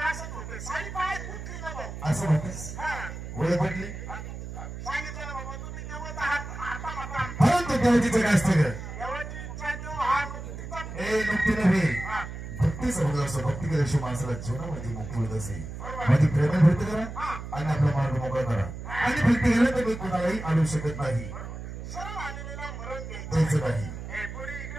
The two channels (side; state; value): right; noise; hum, 9 dB below the sound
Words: असं म्हणतेस ओळख पटली परंतु देवाची काय असतं ग नुकतीनं असं भक्ती केल्याशिवाय माणसाला जीवनामध्ये मुक्ती होत असे. माझी प्रेम भक्ती करा आणि आपला मार्ग मोकळा करा. आणि भक्ती केलं तर मी कोणालाही आणू शकत नाही. सरळ आलेला मरण द्यायचं नाही. हे पुढे